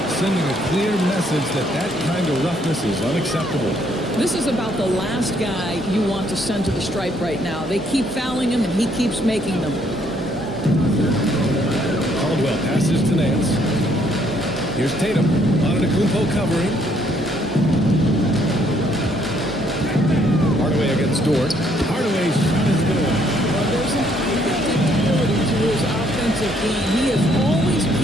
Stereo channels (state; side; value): normal; both; correlation 0.68